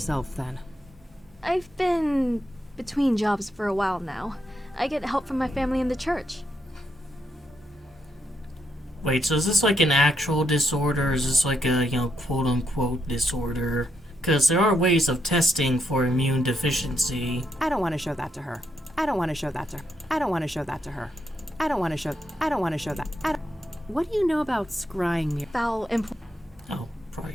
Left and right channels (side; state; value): both; normal; correlation 0.80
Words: then? I've been between jobs for a while now. I get help from my family in the church. Wait, so is this like an actual disorder, or is this like a, quote-unquote disorder? Because there are ways of testing for immune deficiency. I don't want to show that to her. I don't want to show that to her. I don't want to show that to her. I don't want to show that. What do you know about scrying mirror? Foul Oh, probably